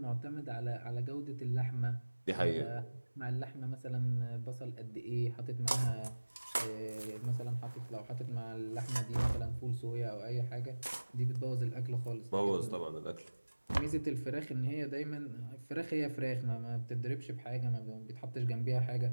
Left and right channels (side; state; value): both; inverted; correlation -1.00